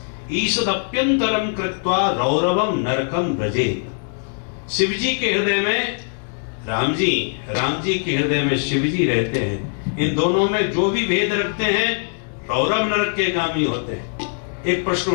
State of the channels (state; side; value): silent; right; 65 dB below the other